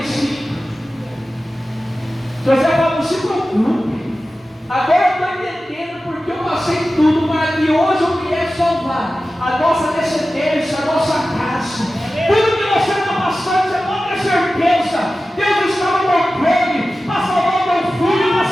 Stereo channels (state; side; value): normal; both; correlation 0.95